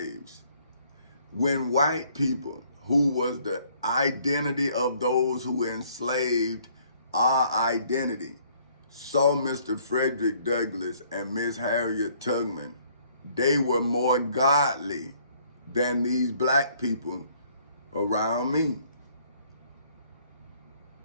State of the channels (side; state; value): both; inverted; correlation -0.62